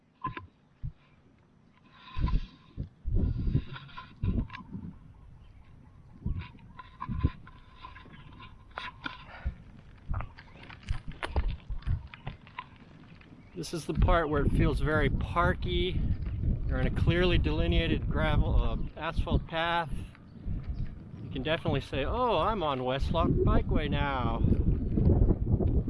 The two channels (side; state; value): both; identical; correlation 1.00